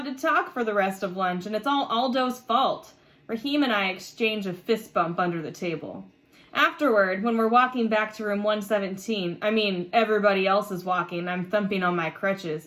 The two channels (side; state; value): both; identical; correlation 1.00